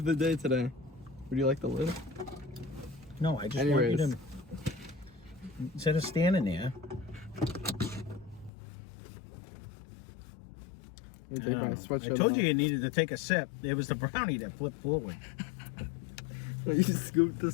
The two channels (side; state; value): right; drops out; at 8.5 s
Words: the day today. Would you like the lid? No, I just want you to... Instead of standing there... I told you needed to take a sip. It was the brownie that flipped forward. You scooped the